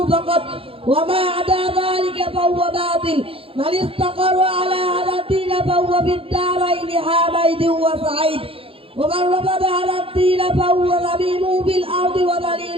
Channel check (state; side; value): late; left; 0.27 ms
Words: فقط وما عدا ذلك فهو باطل من استقر على هذا الدين فهو في الدارين حامد وسعيد ومن رفض على الدين فهو ذميم بالأرض